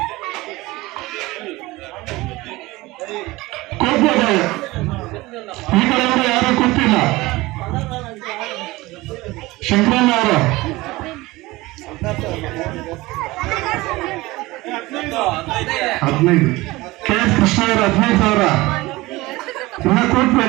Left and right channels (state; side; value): quieter; left; 20.3 dB